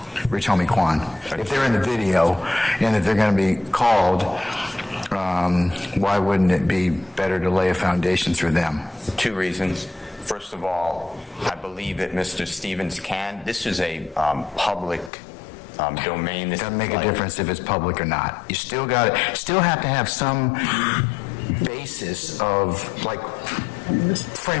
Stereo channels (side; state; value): right; drops out; at 15.1 s